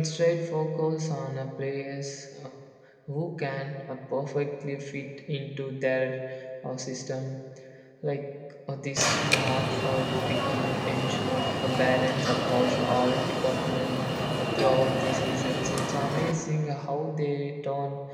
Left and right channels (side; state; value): both; identical; correlation 1.00